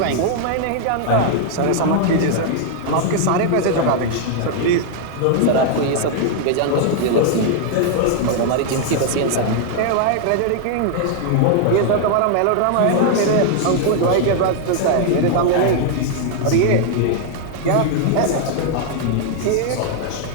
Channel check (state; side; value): different; both; correlation 0.00